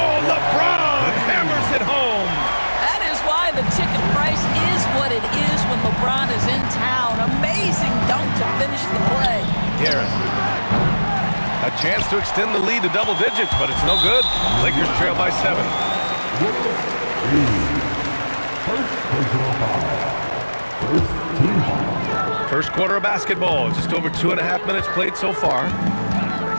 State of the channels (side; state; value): both; inverted; correlation -1.00